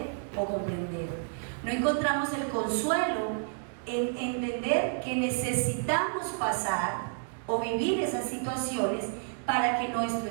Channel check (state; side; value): silent; left; digital silence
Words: o comprender. No encontramos el consuelo en entender que necesitamos pasar o vivir esas situaciones para que nuestro